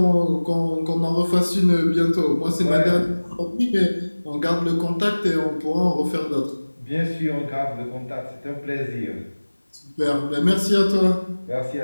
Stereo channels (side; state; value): both; inverted; correlation -1.00